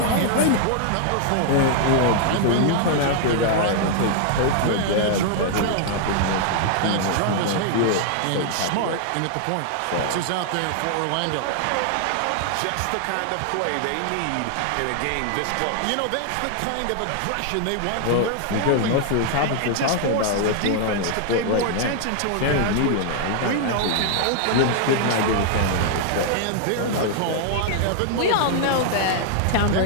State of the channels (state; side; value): different; both; correlation 0.00